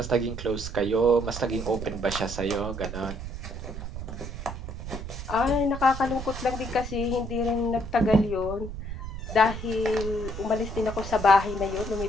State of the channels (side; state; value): right; noise; rumble, 8 dB below the sound